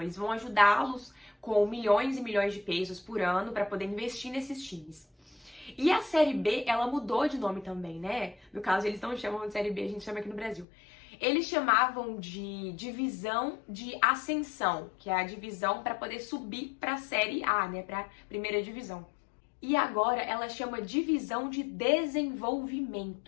Eles vão ajudá-los com milhões e milhões de pesos por ano para poder investir nesses times. E a Série B, ela mudou de nome também, né? No caso, eles não chamam de Série B, a gente chama aqui no Brasil. Eles chamavam de divisão de ascensão, que é a divisão para poder subir para a Série A, né? Para a primeira divisão. E agora ela chama divisão de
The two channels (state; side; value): drops out; right; at 10.7 s